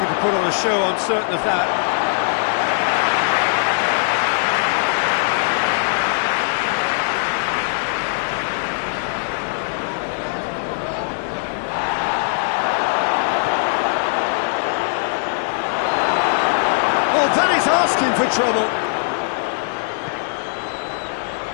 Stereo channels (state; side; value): silent; right; digital silence